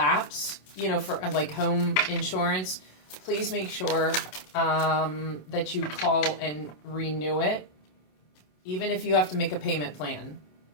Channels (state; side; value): late; right; 27 ms